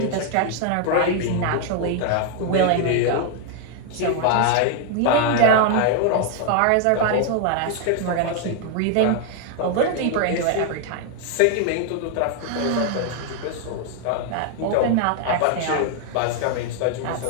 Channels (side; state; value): both; different; correlation 0.00